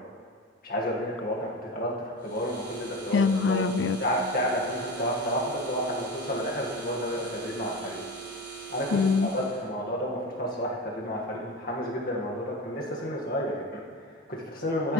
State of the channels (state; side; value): normal; both; correlation 0.26